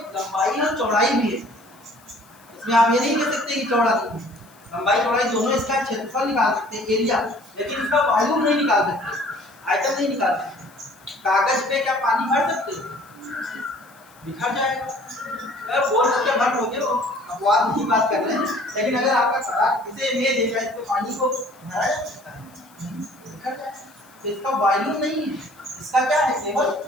और चौड़ाई भी है, इसमें आप ये नहीं कह सकते कि चौड़ा नहीं है, लंबाई चौड़ाई दोनों, इसका क्षेत्रफल निकाल सकते हैं, एरिया, लेकिन इसका वॉल्यूम नहीं निकाल सकते, आयतन नहीं निकाल सकते। कागज पे क्या पानी भर सकते हैं, बिखर जाएगा, अगर बोल सकते भर हो गया, अपवाद नहीं बात कर रहे हैं, लेकिन अगर आपका सड़क इसे ले देगा, इस पे पानी को भरा जा सकता है, बिखर जाएगा, तो इसका वॉल्यूम नहीं है, इसका क्या है, केवल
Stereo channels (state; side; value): noise; left; hiss, 28 dB below the sound